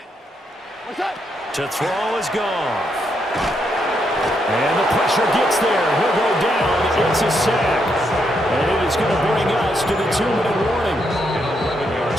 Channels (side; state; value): both; normal; correlation 0.78